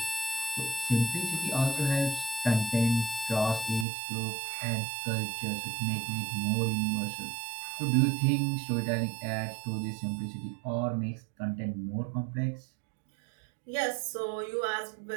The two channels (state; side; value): drops out; left; at 3.9 s